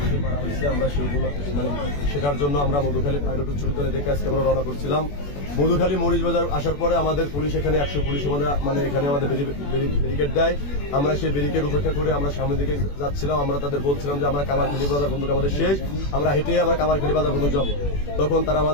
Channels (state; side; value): late; right; 21 ms